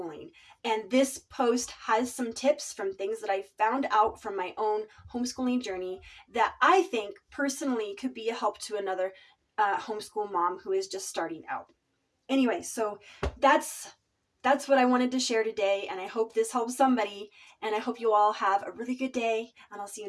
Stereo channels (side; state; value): both; identical; correlation 1.00